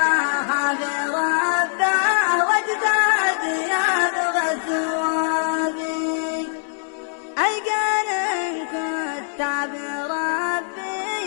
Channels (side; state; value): right; silent; digital silence